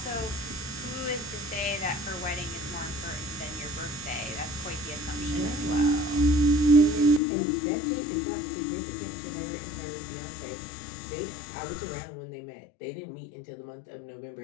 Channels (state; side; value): drops out; right; at 7.2 s